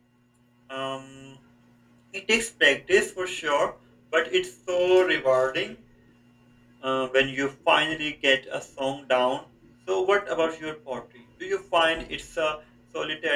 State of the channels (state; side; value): identical; both; correlation 1.00